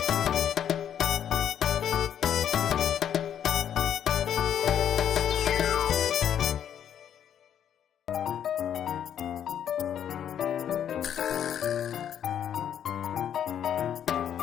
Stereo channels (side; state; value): right; quieter; 9.4 dB